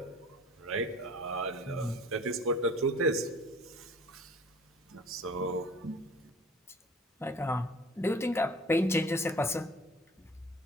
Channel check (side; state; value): both; normal; correlation 0.46